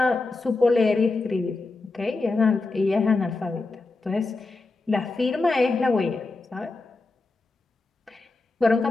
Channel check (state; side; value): quieter; right; 3.5 dB